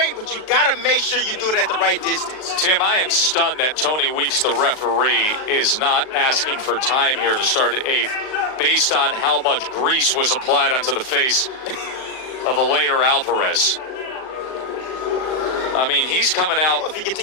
but you got to make sure you do it at the right distance. Tim, I am stunned that Tony Weeks, the referee, is not asking for time here to start the 8th based on how much grease was applied onto the face of Eleider Alvarez. I mean, he's coming out. Well, if he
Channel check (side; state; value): right; late; 38 ms